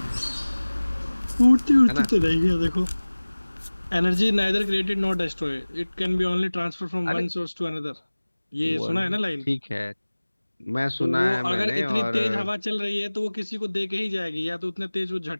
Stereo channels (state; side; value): inverted; both; correlation -1.00